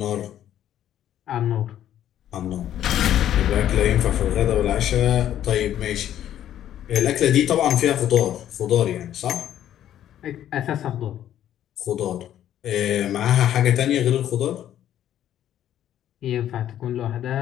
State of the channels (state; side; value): quieter; right; 11.3 dB